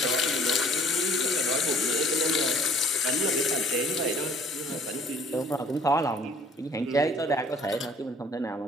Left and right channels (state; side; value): normal; both; correlation 0.55